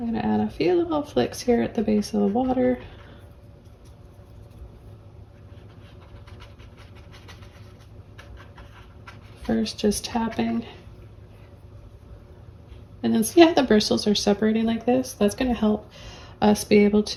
going to add a few little flicks here at the base of the water. First, just tapping And then see how the bristles are separating like this? That's going to help us be able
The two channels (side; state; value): both; identical; correlation 1.00